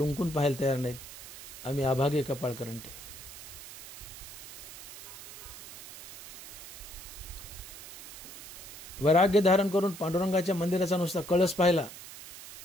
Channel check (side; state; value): right; noise; hiss, 14 dB below the sound